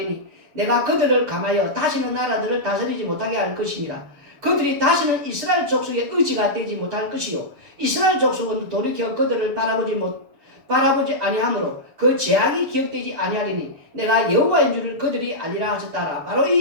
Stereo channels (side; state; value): left; late; 7.0 ms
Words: 내가 그들을 감하여 다시는 나라들을 다스리지 못하게 할 것이니라. 그들이 다시는 이스라엘 족속의 의지가 되지 못할 것이요 이스라엘 족속은 돌이켜 그들을 바라보지 아니하므로 그 제약이 기억되지 아니하리니 내가 여호와인 줄을 그들이 알리라 하셨다라. 바로